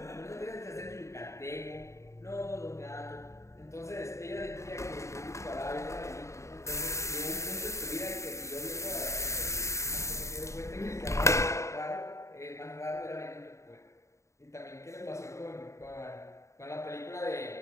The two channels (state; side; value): late; right; 0.14 ms